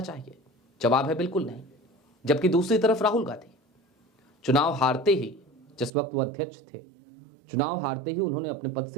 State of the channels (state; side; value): drops out; left; at 5.9 s